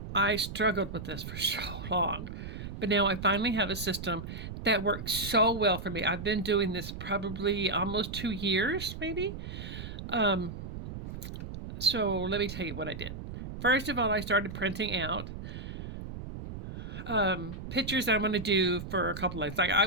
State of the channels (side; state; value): right; noise; rumble, 9 dB below the sound